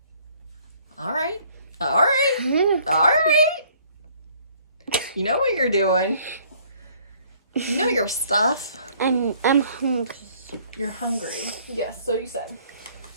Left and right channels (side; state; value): both; inverted; correlation -0.60